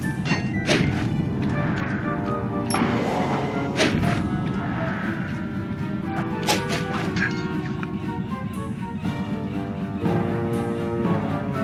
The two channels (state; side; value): identical; both; correlation 1.00